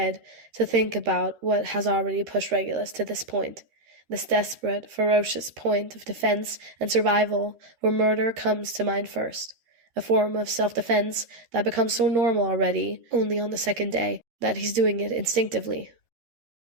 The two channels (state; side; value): late; left; 13 ms